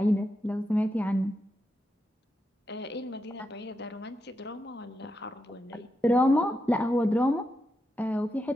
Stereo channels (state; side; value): normal; both; correlation 0.86